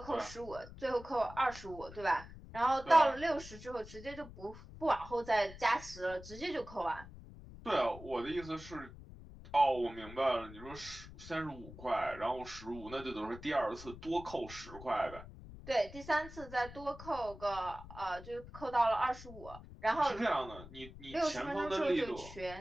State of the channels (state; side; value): noise; left; rumble, 15 dB below the sound